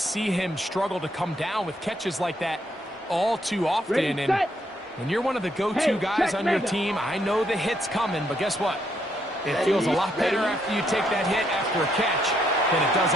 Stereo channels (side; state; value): both; normal; correlation 0.74